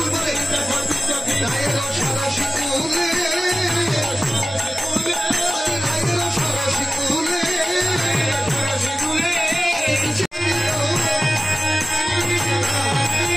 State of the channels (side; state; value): both; normal; correlation 0.96